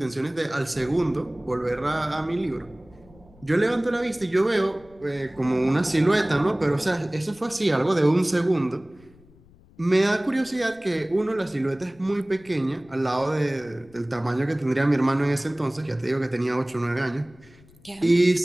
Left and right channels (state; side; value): noise; left; rumble, 26 dB below the sound